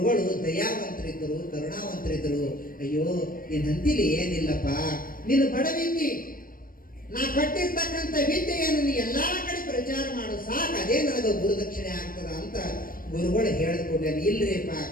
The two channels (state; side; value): late; right; 0.41 ms